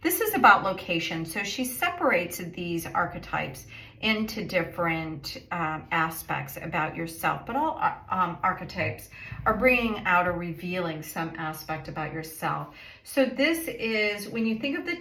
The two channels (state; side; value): identical; both; correlation 1.00